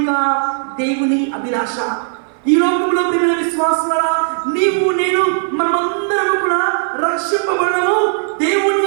దేవుని అభిలాష. ఈ లోకంలో ప్రియమైన విశ్వాసులారా, నీవు నేను మనమందరం కూడా రక్షింపబడము దేవుని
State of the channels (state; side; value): silent; left; 57 dB below the other